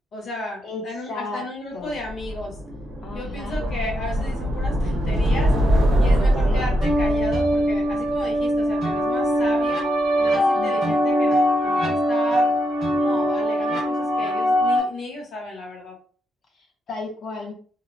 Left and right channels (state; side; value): normal; both; correlation 0.83